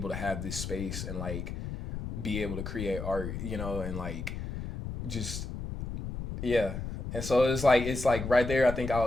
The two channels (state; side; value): noise; left; rumble, 6 dB below the sound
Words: to have this space and like be able to create art, you know, and like just yeah. And so it's like right there I think I